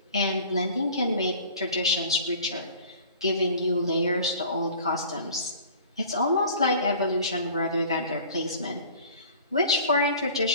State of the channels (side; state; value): both; inverted; correlation -0.45